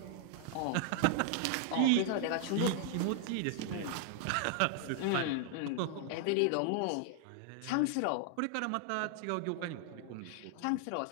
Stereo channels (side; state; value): both; different; correlation 0.00